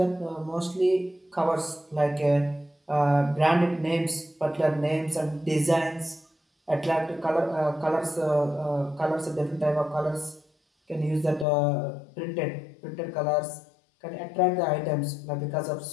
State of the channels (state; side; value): drops out; right; at 11.5 s